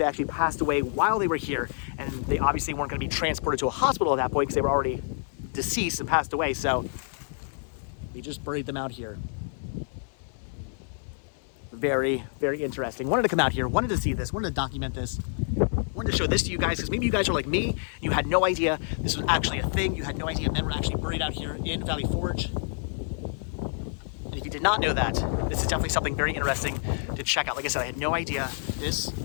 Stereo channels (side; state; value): right; silent; 59 dB below the other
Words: actually passed away while they were here, and they obviously weren't going to be transported to a hospital at that point because they were already deceased and passed away, so they just buried them out here. Very, very interesting. Wanted to come out here, wanted to see this, wanted to document this, wanted to show this to you guys, because maybe you guys are like me, you had no idea this was actually a thing, you had no idea men were actually buried out here in Valley Forge. And if you did not know that, this is definitely something very interesting to check out. Like I said, I had no idea this